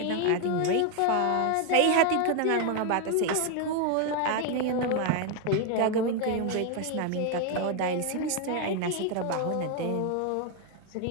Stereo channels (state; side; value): different; both; correlation 0.01